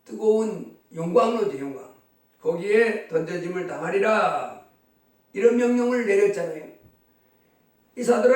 뜨거운 용광로죠, 용광. 거기에 던져짐을 당하리라. 이런 명령을 내렸잖아요. 이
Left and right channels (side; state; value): both; identical; correlation 1.00